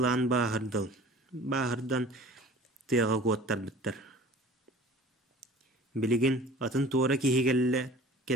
bağırdıl. Bağırdan tıyağa kuattar bittar. Biligin atın tuğra kihi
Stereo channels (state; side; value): normal; both; correlation 0.45